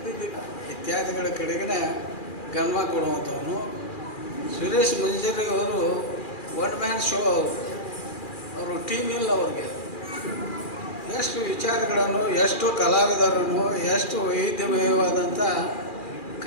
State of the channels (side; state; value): right; late; 2.4 ms